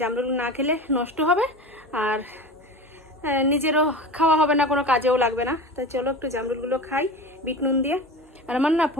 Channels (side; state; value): both; normal; correlation 0.31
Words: না খেলে নষ্ট হবে আর নিজেরও খাওয়া হবে না, কোনো কাজেও লাগবে না। তাই চলো একটু জামরুলগুলো খাই বিট নুন দিয়ে। আর আমার না